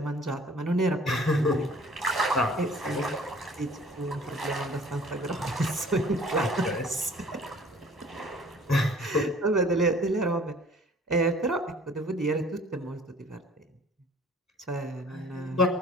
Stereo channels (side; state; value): both; normal; correlation 0.51